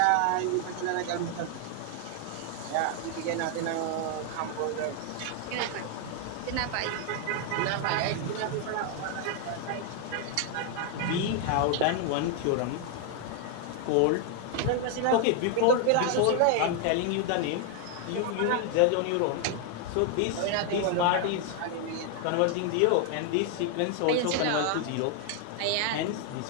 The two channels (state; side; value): different; both; correlation 0.00